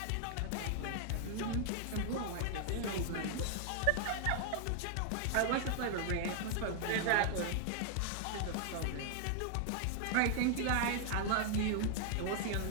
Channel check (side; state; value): both; different; correlation 0.00